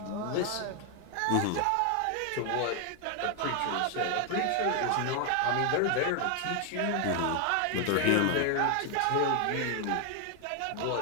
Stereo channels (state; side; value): different; both; correlation 0.00